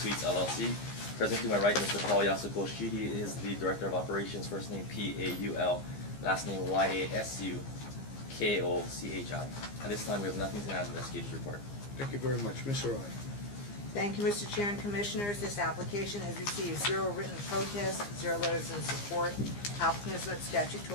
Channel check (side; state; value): right; late; 15 ms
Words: LLC. Present to my right, Mr. Paul Yasukoshi. He is the Director of Operations, first name P-A-U-L, last name Y-A-S-U-K-O-C-H-I. At this time, we have nothing to add to the investigative report. Thank you very much. Ms. Arai. Thank you, Mr. Chair and Commissioners. This application has received 0 written protests, 0 letters in support. Applicant has met